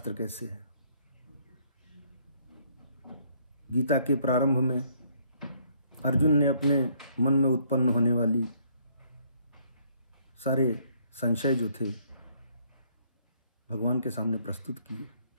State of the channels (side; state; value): both; inverted; correlation -0.66